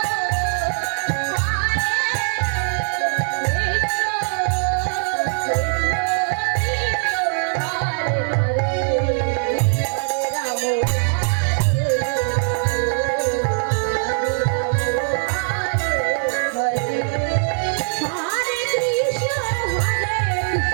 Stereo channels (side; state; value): left; silent; digital silence